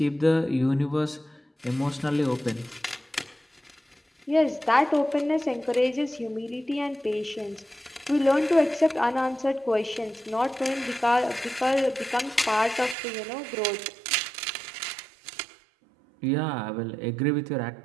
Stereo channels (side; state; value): left; drops out; at 13.0 s